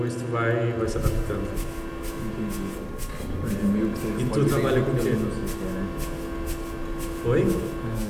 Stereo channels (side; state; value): both; identical; correlation 1.00